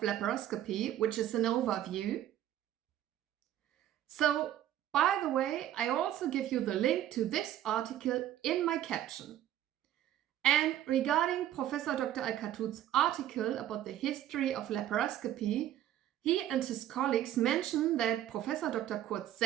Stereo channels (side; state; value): left; quieter; 12.0 dB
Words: which is an overview. So, by the way, I also give you the link to this article in my caption. And regarding Professor Dr. Alkatout's article about the history of laparoscopy, he and his colleagues mention that Professor Dr. Kurt